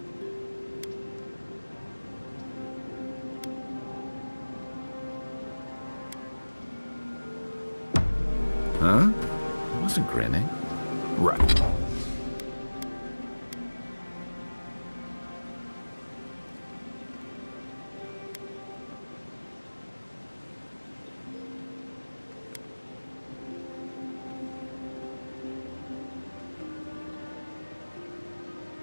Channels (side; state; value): both; inverted; correlation -1.00